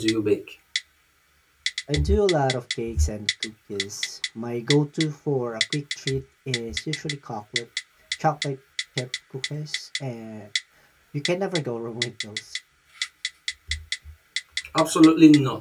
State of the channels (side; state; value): both; identical; correlation 1.00